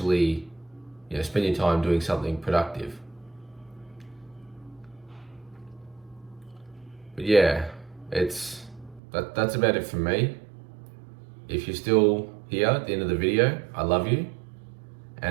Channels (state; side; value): drops out; left; at 9.0 s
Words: you know, spend your time doing something productive. But yeah, that's about it from me. If you're still here at the end of the video, I love you.